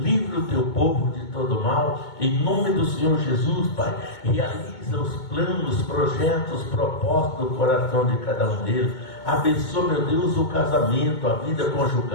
o teu povo de todo mal, em nome do Senhor Jesus, Pai. Realiza os planos, projetos, propósitos do coração de cada um deles. Abençoa, meu Deus, o casamento, a vida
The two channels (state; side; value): late; right; 2.2 ms